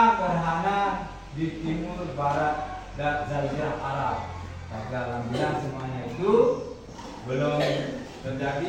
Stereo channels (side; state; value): both; identical; correlation 1.00